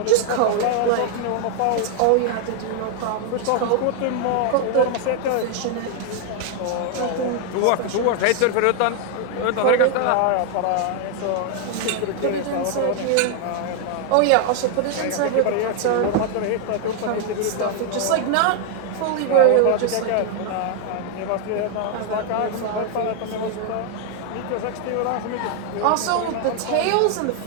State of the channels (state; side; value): different; both; correlation 0.00